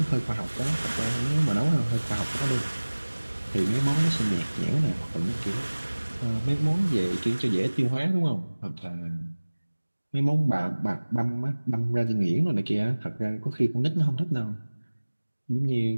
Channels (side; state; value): both; inverted; correlation -1.00